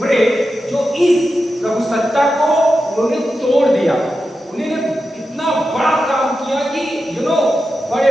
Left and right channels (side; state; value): both; normal; correlation 0.90